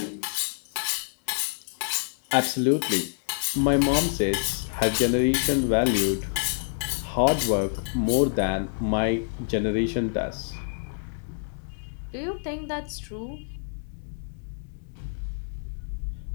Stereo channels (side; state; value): right; silent; digital silence